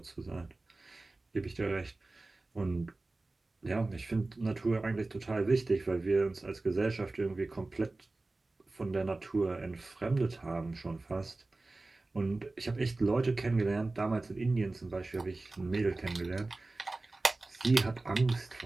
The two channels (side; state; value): left; quieter; 3.2 dB